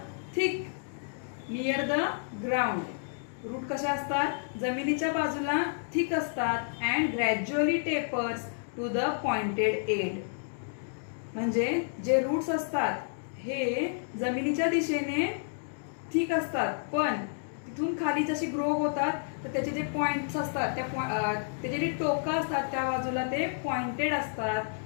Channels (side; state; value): right; silent; digital silence